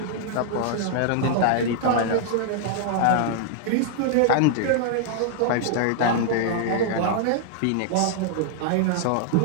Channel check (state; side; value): different; both; correlation -0.01